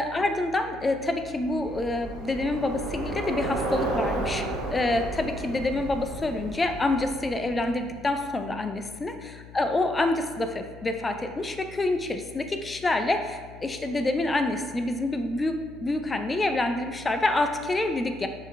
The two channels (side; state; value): left; noise; hum, 18 dB below the sound